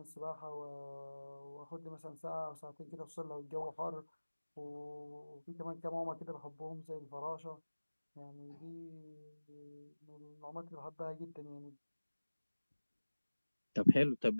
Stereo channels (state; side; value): inverted; both; correlation -1.00